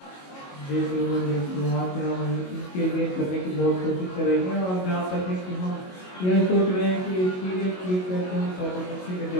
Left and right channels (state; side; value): late; right; 22 ms